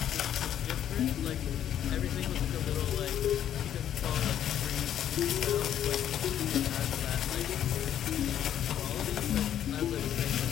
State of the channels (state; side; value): quieter; right; 10.4 dB